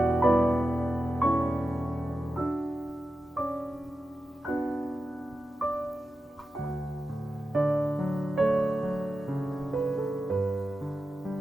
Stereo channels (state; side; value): normal; both; correlation 0.91